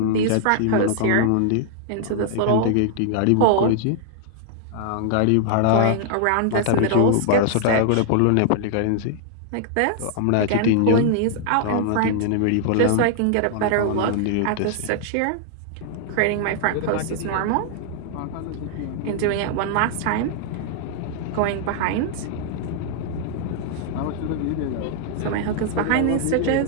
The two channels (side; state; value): both; different; correlation -0.01